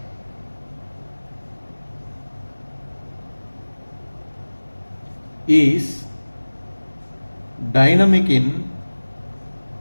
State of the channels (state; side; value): inverted; both; correlation -1.00